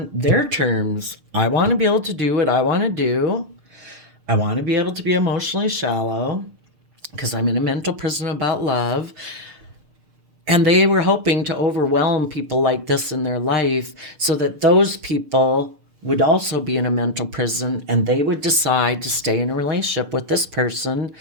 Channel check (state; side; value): late; left; 6.5 ms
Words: their terms. I want to be able to do what I want to do. I want to be able to be emotionally shallow because I'm in a mental prison about love. And they were hoping to overwhelm people like this in their life so that those people would also be in a mental prison, and they would decide to stay in a relationship with this person